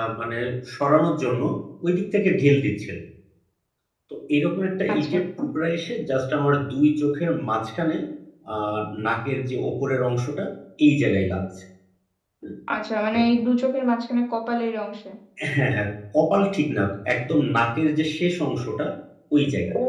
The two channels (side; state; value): both; identical; correlation 1.00